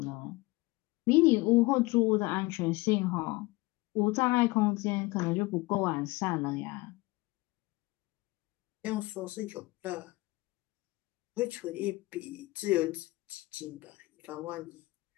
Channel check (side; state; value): right; quieter; 22.1 dB